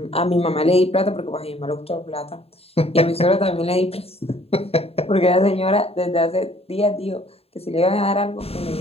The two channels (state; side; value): late; right; 0.29 ms